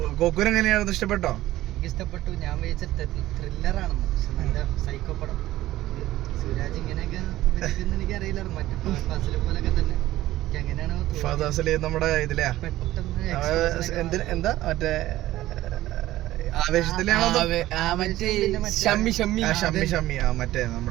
ഗോകുൽ എങ്ങനെയായിരുന്നു? ഇഷ്ടപ്പെട്ടോ? ഇഷ്ടപ്പെട്ടു. ഞാൻ വിചാരിച്ച ത്രില്ലറാണെന്ന്, പക്ഷെ നല്ല സൈക്കോ പടം. സുരാജ് ഇങ്ങനെയൊക്കെ എനിക്ക് അറിയില്ലായിരുന്നു. മറ്റു ഫാസിലെ പോലൊക്കെ തന്നെ ഫാസില് നമ്മുടെ ഇതിലെയാ എന്താ മറ്റേ ആവേശത്തിലാണോ? ഷമ്മി മറ്റേ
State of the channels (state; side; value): quieter; left; 15.5 dB